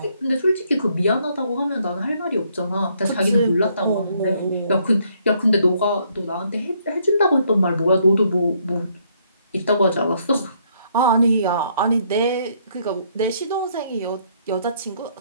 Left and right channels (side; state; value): both; inverted; correlation -0.69